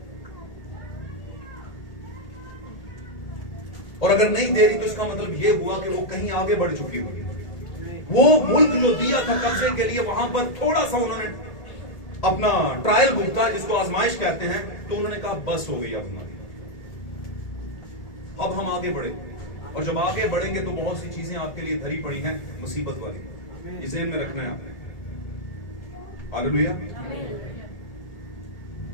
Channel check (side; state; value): right; late; 1.8 ms